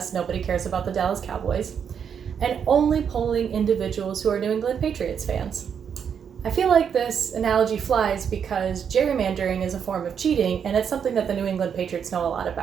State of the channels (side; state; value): left; quieter; 7.5 dB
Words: nobody cares about the Dallas Cowboys, and only polling individuals who are New England Patriots fans. I feel like this analogy flies because gerrymandering is a form of cheating and it's something that the New England Patriots know a lot